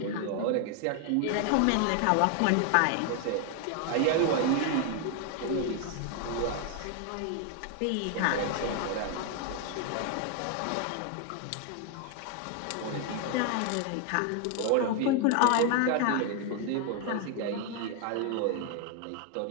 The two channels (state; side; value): different; both; correlation 0.01